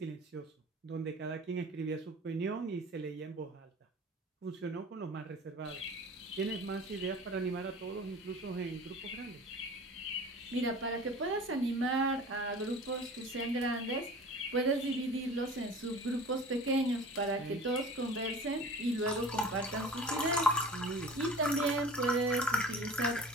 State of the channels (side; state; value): both; normal; correlation 0.41